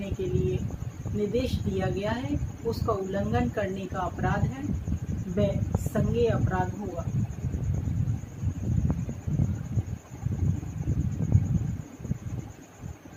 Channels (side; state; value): both; identical; correlation 1.00